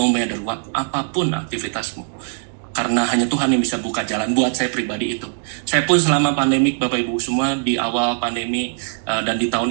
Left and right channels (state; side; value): silent; left; digital silence